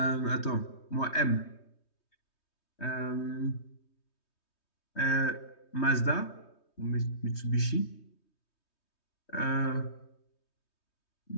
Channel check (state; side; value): late; right; 3.2 ms